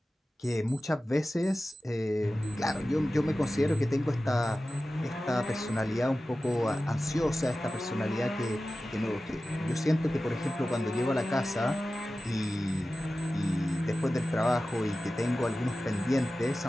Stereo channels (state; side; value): normal; both; correlation 0.95